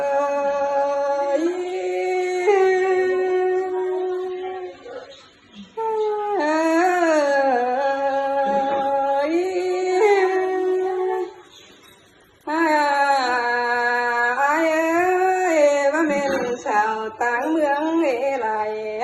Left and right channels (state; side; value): identical; both; correlation 1.00